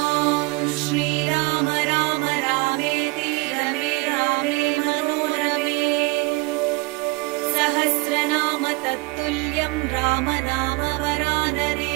श्रीराम राम रामेति रमे रामे मनोरमे। सहस्रनाम तत्तुल्यं रामनाम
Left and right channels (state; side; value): quieter; left; 26.1 dB